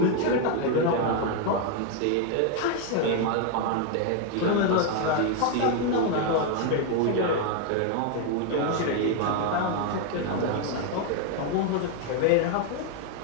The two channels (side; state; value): both; different; correlation 0.01